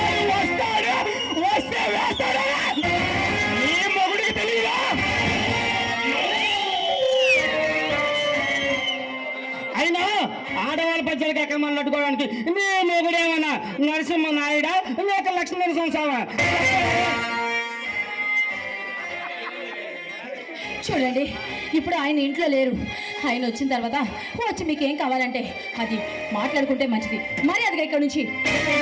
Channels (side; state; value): both; identical; correlation 1.00